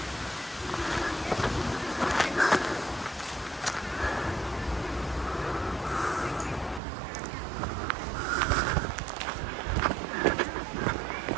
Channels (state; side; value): drops out; left; at 6.8 s